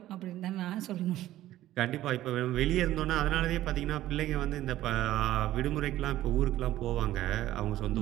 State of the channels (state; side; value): quieter; left; 14.3 dB